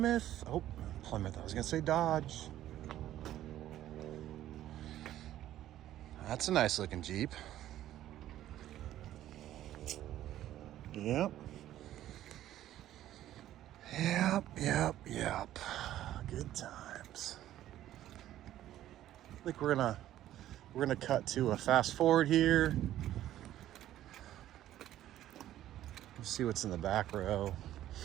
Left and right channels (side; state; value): left; quieter; 13.0 dB